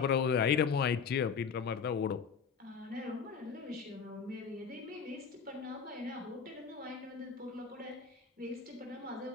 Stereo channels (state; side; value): quieter; right; 6.1 dB